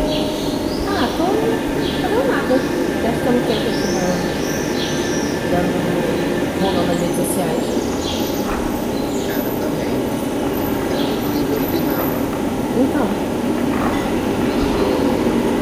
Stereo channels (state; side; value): identical; both; correlation 1.00